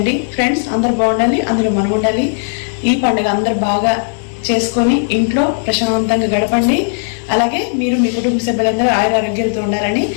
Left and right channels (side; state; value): right; silent; digital silence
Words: ఫ్రెండ్స్. అందరు బాగుండాలి, అందులో మనం ఉండాలి. ఈ పండుగ అందరు బాగా చేసుకొని ఇంట్లో ప్రశాంతంగా గడపండి. అలాగే మీరు మీ కుటుంబ సభ్యులందరూ ఆరోగ్యాలతో ఉండాలని